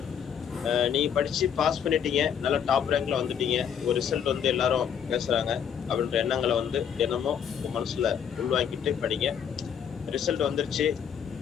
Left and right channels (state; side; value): quieter; right; 8.1 dB